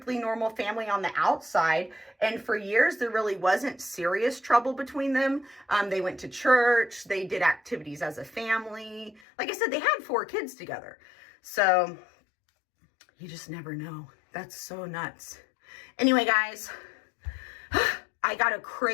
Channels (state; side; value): drops out; right; at 9.2 s